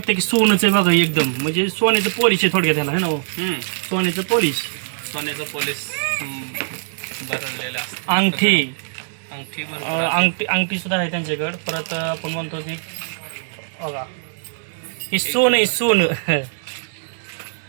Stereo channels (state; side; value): silent; left; 65 dB below the other